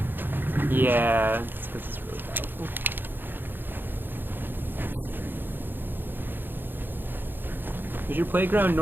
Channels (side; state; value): left; late; 0.097 ms